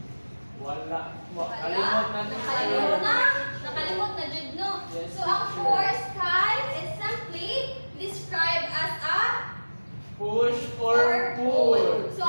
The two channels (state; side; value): inverted; both; correlation -1.00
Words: Wala. Wala. Kalimot na, Nakalimot na. teacher. Nakalimot na jud no. Yes, So ang teacher. force kay is simply described as a Push or pull. So